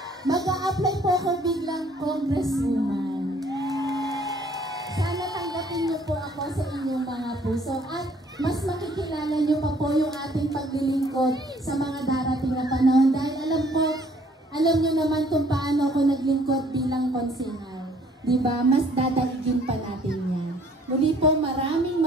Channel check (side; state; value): both; normal; correlation 0.60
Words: Mag-a-apply po ako biglang Congresswoman. Sana tanggapin niyo po ako sa inyong mga puso at mas makikilala niyo pa po yung ating paglilingkod sa mga darating na panahon. Dahil alam niyo naman kung paano ako naglingkod bilang konsehal. Diba? Mas dadaigin pa natin yan. Muli po, maraming